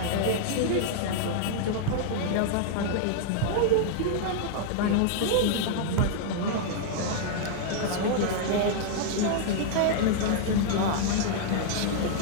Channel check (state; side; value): different; both; correlation -0.01